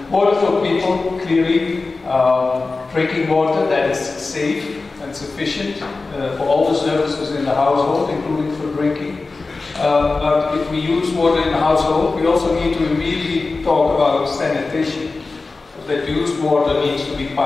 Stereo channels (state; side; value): quieter; right; 3.8 dB